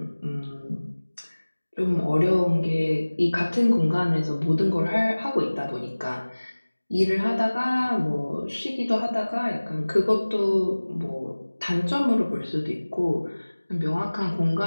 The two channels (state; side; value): inverted; both; correlation -1.00